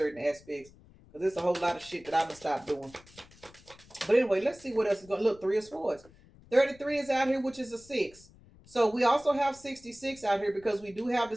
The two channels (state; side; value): noise; left; rumble, 25 dB below the sound